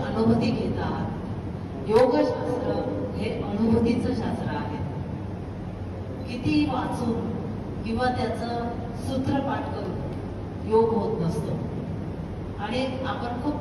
घेत आहात. योगशास्त्र हे अनुभूतीचं शास्त्र आहे. किती वाचून किंवा त्याचं सूत्रपाठ करून योग होत नसतो. आणि आपण खूप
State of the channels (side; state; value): both; identical; correlation 1.00